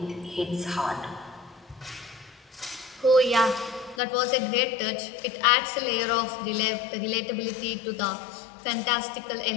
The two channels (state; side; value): drops out; right; at 4.0 s